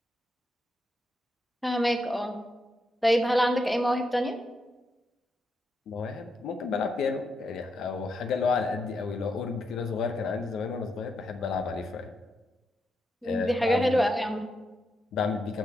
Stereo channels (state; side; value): normal; both; correlation 0.82